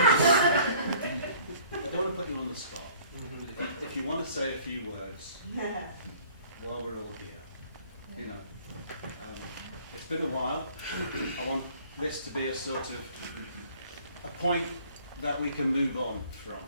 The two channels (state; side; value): inverted; both; correlation -0.54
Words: I don't want to put you on the spot. If you want to say a few words there? while we're all here, it's been a while. I want this to be a sort of a point that we can move on from.